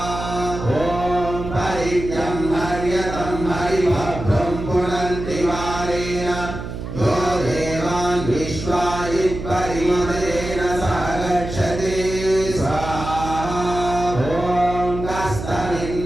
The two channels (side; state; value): right; noise; hum, 7 dB below the sound